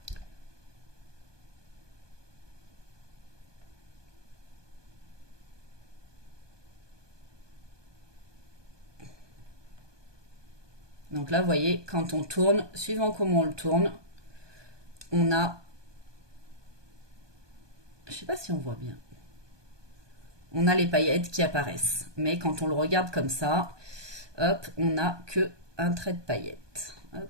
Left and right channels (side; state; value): left; late; 1.2 ms